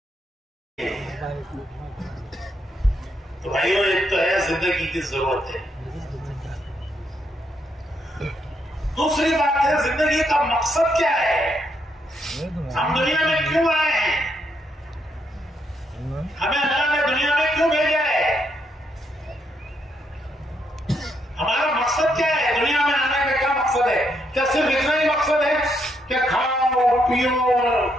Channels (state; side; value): normal; both; correlation 0.77